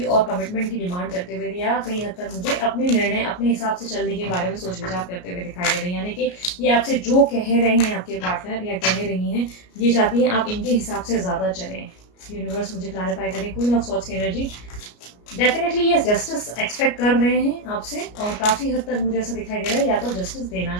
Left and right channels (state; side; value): late; right; 33 ms